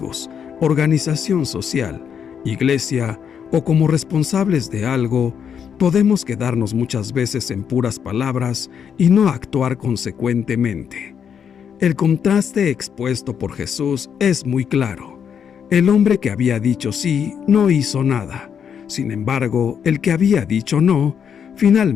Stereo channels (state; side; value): quieter; right; 7.7 dB